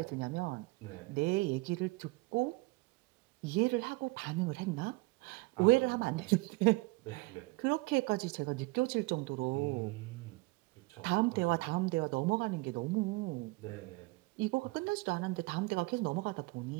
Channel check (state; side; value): quieter; left; 23.5 dB